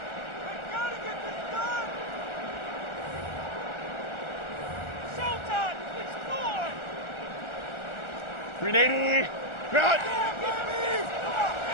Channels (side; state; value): right; late; 1.4 ms